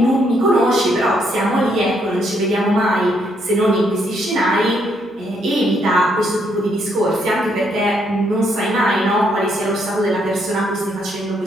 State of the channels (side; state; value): both; normal; correlation 0.73